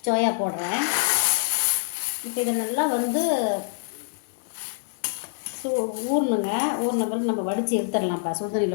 சோயா போடுறேன். இப்போ இதை நல்லா ஊறணுங்க. ஊறின பிறகு நம்ம வடித்து எடுத்துடலாம்ப்பா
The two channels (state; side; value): silent; right; digital silence